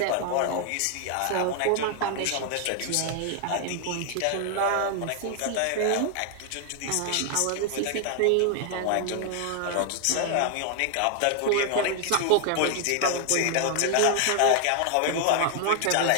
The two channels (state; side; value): different; both; correlation 0.00